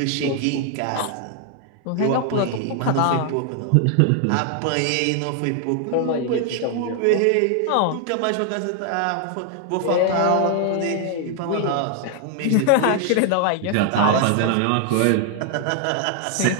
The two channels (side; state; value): both; different; correlation 0.00